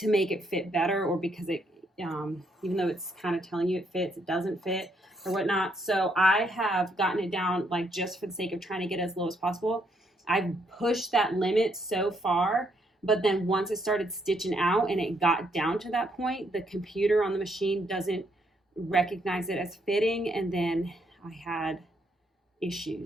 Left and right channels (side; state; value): both; normal; correlation 0.73